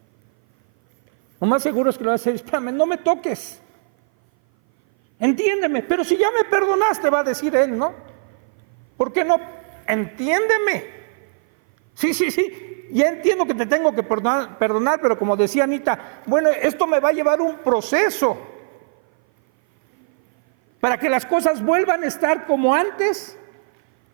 Lo más seguro es que le vas a decir, espérame, no me toques. Entiéndeme, pero si ya me perdonaste, va a decir él, ¿no? ¿Por qué no? Entiéndeme. Sí, ya entiendo que te tengo que perdonar, pero como decía Anita, bueno, esto me va a llevar un proceso. Para que las cosas vuelvan a estar como antes,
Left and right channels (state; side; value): silent; left; 58 dB below the other